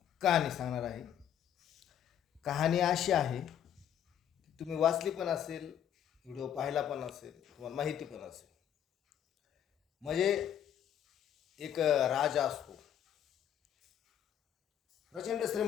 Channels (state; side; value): quieter; right; 9.8 dB